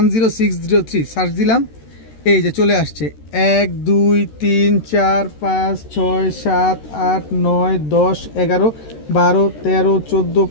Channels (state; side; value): late; right; 13 ms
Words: সার্চ দিলাম, এই যে চলে আসছে। 1 2 3 4 5 6 7 8 9 10 11 12 13 14